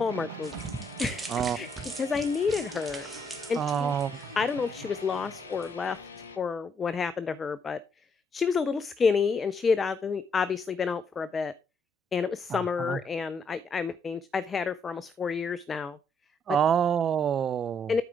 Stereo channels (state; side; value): normal; both; correlation 0.73